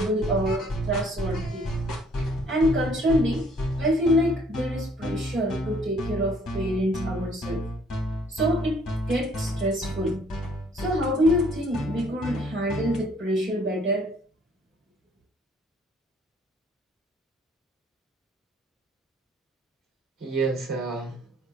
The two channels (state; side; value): normal; both; correlation 0.61